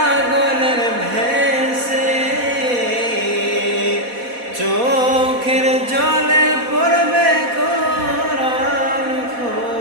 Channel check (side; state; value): left; late; 4.1 ms